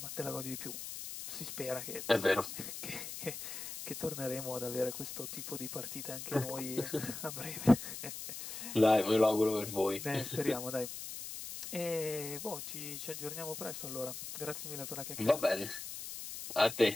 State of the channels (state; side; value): noise; left; hiss, 8 dB below the sound